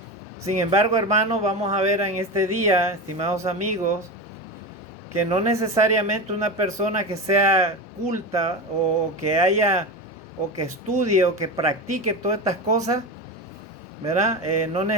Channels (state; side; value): normal; both; correlation 0.22